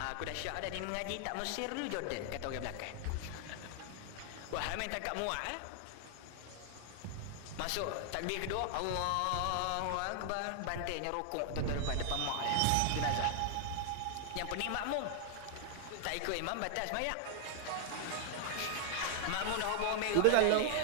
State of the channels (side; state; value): both; different; correlation 0.00